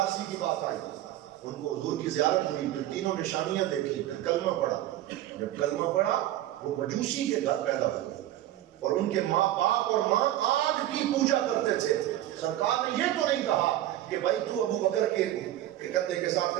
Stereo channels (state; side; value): quieter; left; 13.9 dB